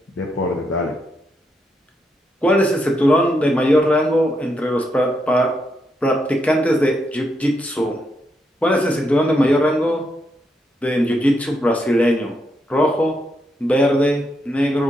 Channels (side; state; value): both; normal; correlation 0.80